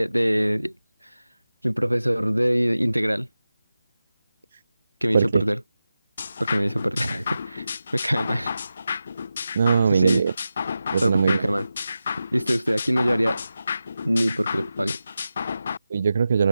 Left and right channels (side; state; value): both; inverted; correlation -0.93